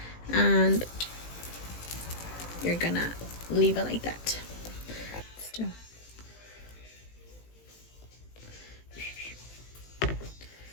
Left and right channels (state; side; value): late; right; 18 ms